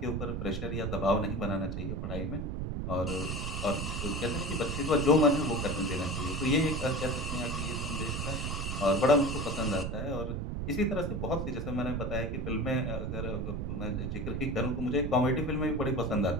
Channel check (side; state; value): right; noise; rumble, 3 dB below the sound